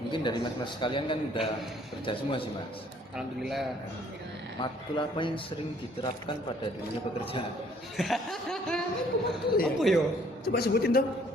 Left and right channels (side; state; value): both; normal; correlation 0.61